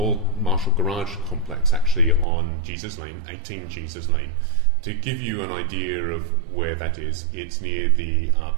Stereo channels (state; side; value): drops out; left; at 2.2 s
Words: Marshall Garage complex, actually on Jesus Lane, 18 Jesus Lane. To give you an idea of where that is, it's near the